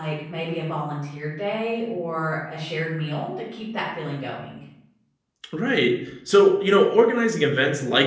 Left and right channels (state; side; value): identical; both; correlation 1.00